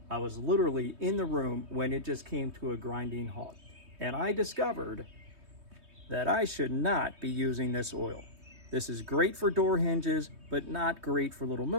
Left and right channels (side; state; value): left; late; 3.2 ms